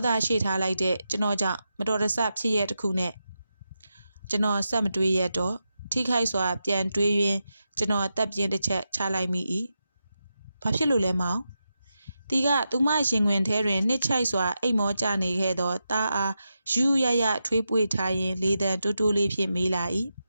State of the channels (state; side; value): inverted; both; correlation -0.88